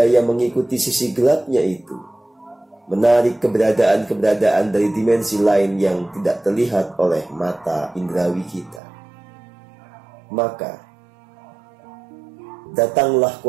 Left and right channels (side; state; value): left; drops out; at 8.8 s